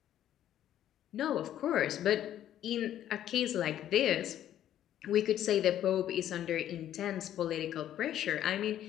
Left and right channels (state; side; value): quieter; right; 11.5 dB